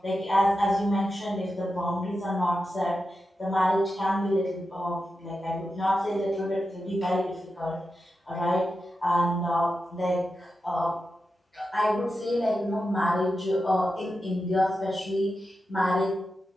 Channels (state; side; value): normal; both; correlation 0.90